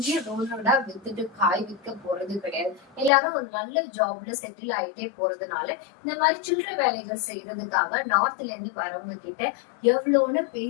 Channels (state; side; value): drops out; right; at 3.1 s